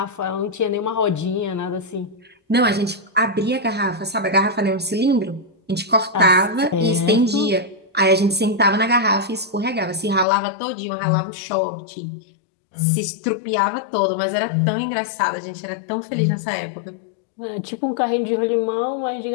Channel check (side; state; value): right; drops out; at 10.2 s